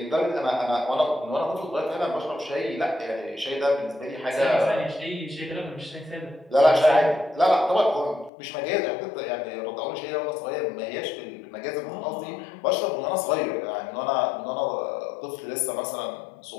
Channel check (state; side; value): drops out; right; at 8.3 s